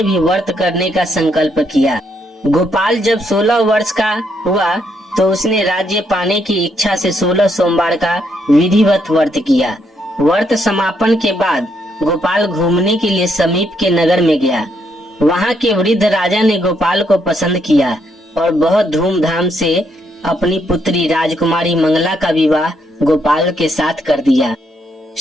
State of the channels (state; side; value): normal; both; correlation 0.75